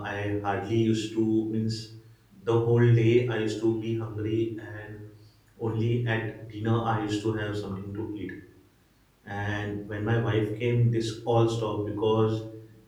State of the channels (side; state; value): both; identical; correlation 1.00